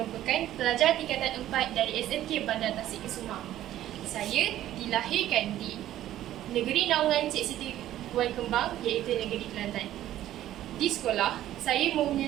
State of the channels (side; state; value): left; quieter; 13.0 dB